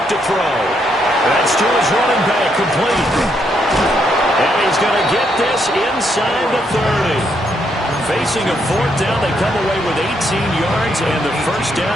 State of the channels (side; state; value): both; normal; correlation 0.76